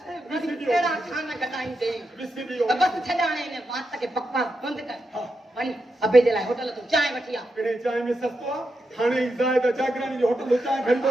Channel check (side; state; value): both; normal; correlation 0.86